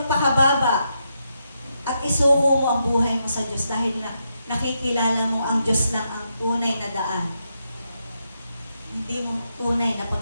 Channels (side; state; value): both; inverted; correlation -0.82